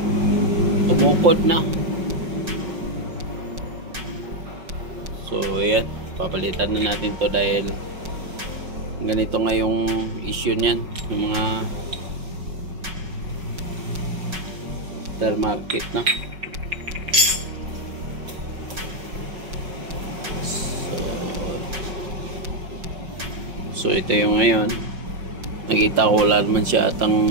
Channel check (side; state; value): left; late; 5.3 ms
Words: tumukod na. So ayan, papalitan na natin to, dahil ganito nga yung issue niyan, yung mga aftermarket na. So ito yung ngayon, nakita ko wala naman siya